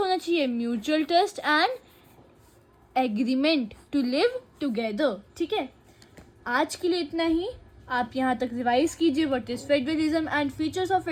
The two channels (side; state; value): both; identical; correlation 1.00